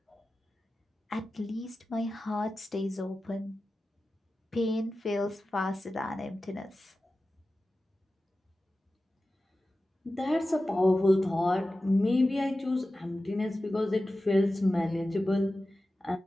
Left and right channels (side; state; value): both; normal; correlation 0.94